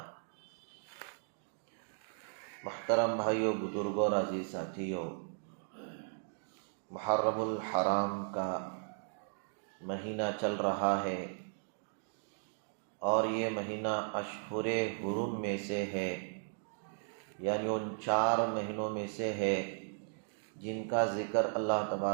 محترم بھائیو، بزرگوں اور عزیز ساتھیو، محرم الحرام کا مہینہ چل رہا ہے اور یہ مہینہ اشہر حرم میں سے ہے، یعنی ان 4 مہینوں میں سے ہے جن کا ذکر اللہ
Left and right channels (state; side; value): silent; left; digital silence